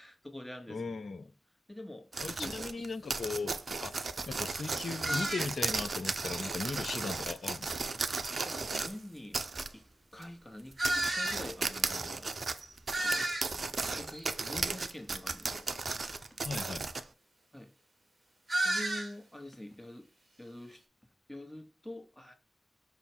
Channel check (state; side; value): normal; both; correlation 0.91